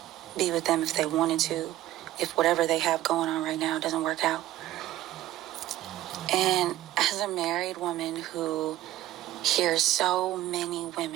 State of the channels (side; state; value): left; quieter; 14.5 dB